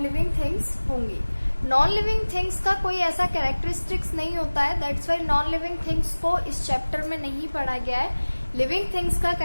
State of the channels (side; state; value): both; inverted; correlation -1.00